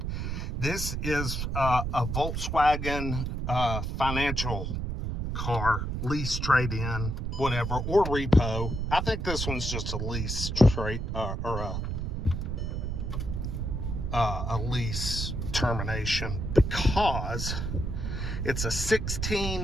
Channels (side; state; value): right; noise; rumble, 2 dB below the sound